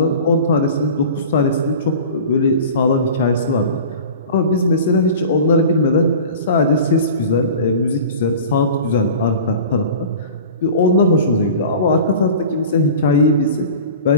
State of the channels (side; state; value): both; inverted; correlation -0.38